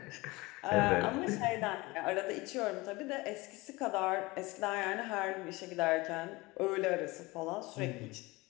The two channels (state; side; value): quieter; right; 22.5 dB